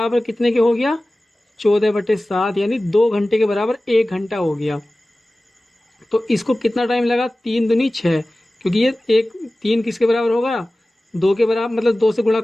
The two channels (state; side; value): normal; both; correlation 0.97